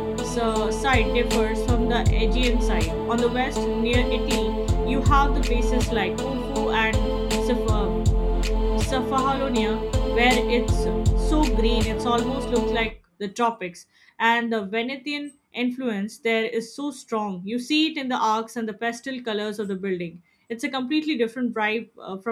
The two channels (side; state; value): both; identical; correlation 1.00